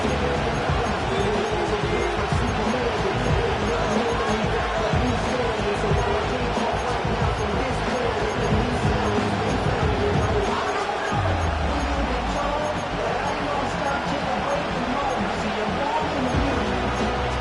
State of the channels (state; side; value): identical; both; correlation 1.00